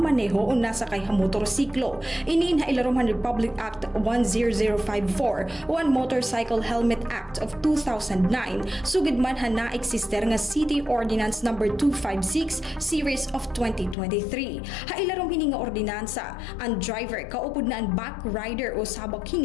o nasa kay ha motorsiklo. Iniin ha ilaruman Republic Act 10054 o ang Motorcycle Helmet Act of 2009 sugid man ha na-eksister nga City Ordinance number 256 series of 2023. Ha ilarom hini nga ordinansa, ang driver kaupod na ang back rider o sabak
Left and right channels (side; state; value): right; drops out; at 14.0 s